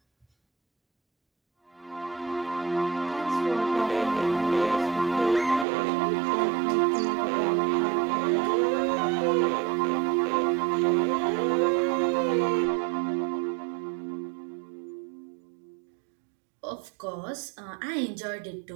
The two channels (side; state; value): left; drops out; at 5.7 s